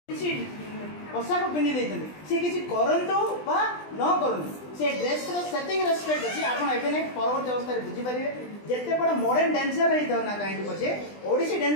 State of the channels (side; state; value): right; late; 20 ms